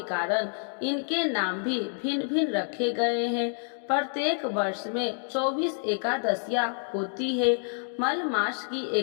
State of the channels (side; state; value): right; silent; 59 dB below the other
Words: कारण इनके नाम भी भिन्न भिन्न रखे गए हैं। प्रत्येक वर्ष में 24 एकादशियां होती है। मल मास की